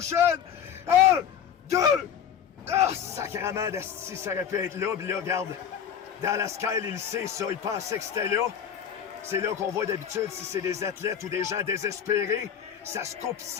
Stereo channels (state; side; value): quieter; right; 8.5 dB